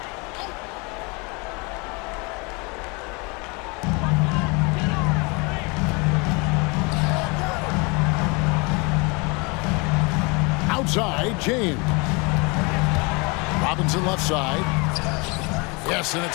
Outside, James. Robinson left side. Yes, and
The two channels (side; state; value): right; quieter; 29.0 dB